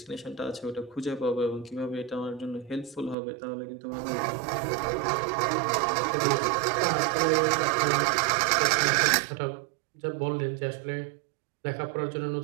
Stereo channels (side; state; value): left; drops out; at 3.2 s